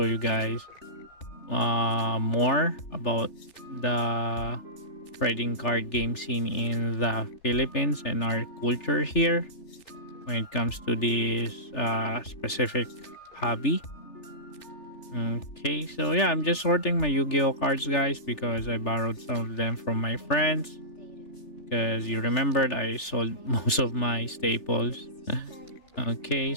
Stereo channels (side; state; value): right; late; 3.4 ms